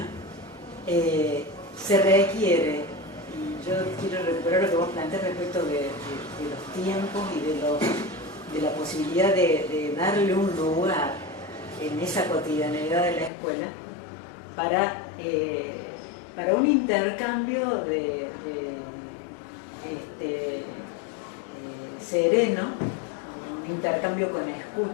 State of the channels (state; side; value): drops out; right; at 13.3 s